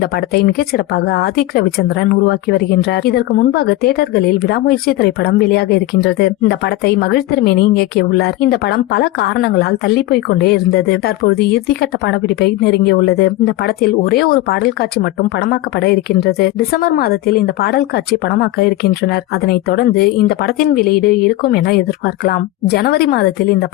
படத்தை மிகச் சிறப்பாக ஆதிக் ரவிச்சந்திரன் உருவாக்கி வருகின்றார். இதற்கு முன்பாக தியேட்டர்களில் விடாமுயற்சி திரைப்படம் வெளியாக இருக்கின்றது. இந்த படத்தை மகிழ் திருமேனி இயக்கியுள்ளார். இந்த படம் பல காரணங்களால் தள்ளி போய் கொண்டே இருந்தது. தற்போது இறுதிக்கட்ட படப்பிடிப்பை நெருங்கியுள்ளது. இந்த படத்தில் ஒரே ஒரு பாடல் காட்சி மட்டும் படமாக்கப்பட இருக்கின்றது. டிசம்பர் மாதத்தில் இந்த பாடல் காட்சி படமாக்க இருக்கின்றனர். அதனைத் தொடர்ந்து இந்த படத்தின் வெளியீடு இருக்கும் என எதிர்பார்க்கலாம். ஜனவரி மாதத்தில் இந்த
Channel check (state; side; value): quieter; right; 17.0 dB